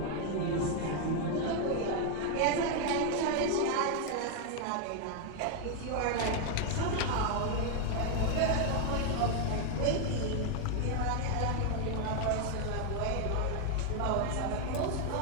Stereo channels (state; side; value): different; both; correlation 0.00